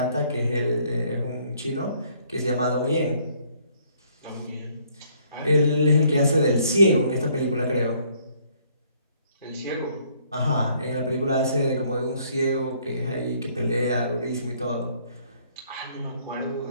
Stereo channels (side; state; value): both; inverted; correlation -0.64